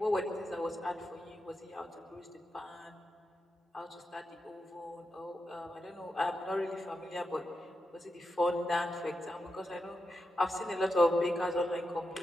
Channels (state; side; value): normal; both; correlation 0.88